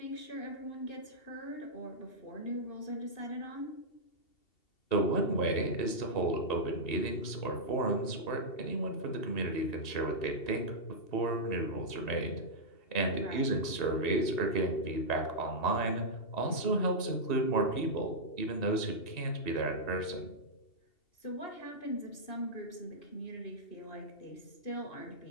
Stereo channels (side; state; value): right; late; 2.7 ms